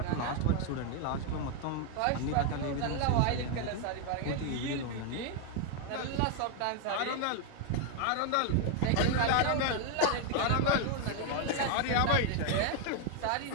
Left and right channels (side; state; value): both; different; correlation 0.00